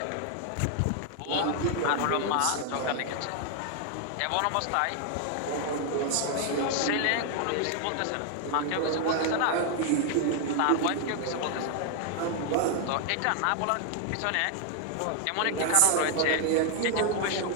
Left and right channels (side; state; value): both; different; correlation 0.00